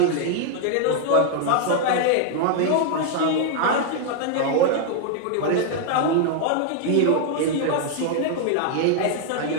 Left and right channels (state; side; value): different; both; correlation 0.00